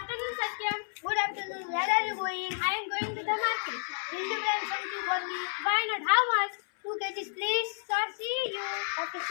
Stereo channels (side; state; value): right; silent; 57 dB below the other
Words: Satyam. Good afternoon. Where are you going? I am going to the market. Will you bring something for me? Why not? How much? 2 kgs, please. Sir, see you. Okay,